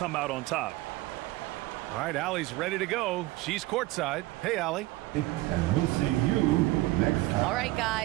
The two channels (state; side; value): quieter; left; 19.3 dB